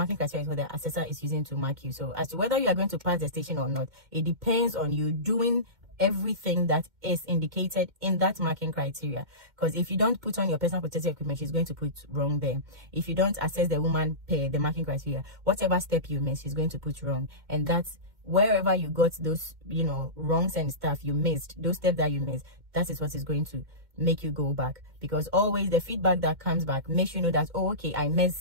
criteria is what the assessor is using to mark you. So as to whether you are going to pass the station or not, it depends on you doing everything that is indicated in that marking criteria. Because if you don't put on your personal protective equipment, she's going to put wrong there. If you don't assess the woman per the marking criteria, whatever step you miss, she's going to put wrong. And that's wherever you got those wrongs and stuff you missed, those steps that you missed, that is what is going to make you go back. Because always the feedback that comes back makes you know that, oh, okay, I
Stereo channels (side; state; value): left; late; 2.1 ms